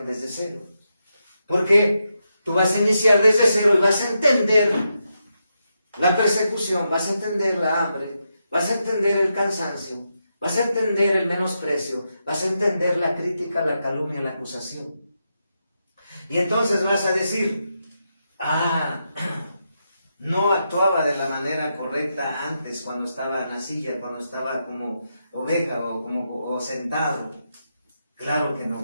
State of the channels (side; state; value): both; inverted; correlation -0.85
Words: desde cero. Porque tú vas a iniciar desde cero y vas a entender la persecución, vas a entender la hambre, vas a entender el cansancio, vas a entender el menosprecio, vas a entender la crítica, la calumnia, la acusación. Y entonces vas a decir, no actuaba de la manera correcta antes, cuando estaba en la silla, cuando estaba como oveja o sentado. Claro que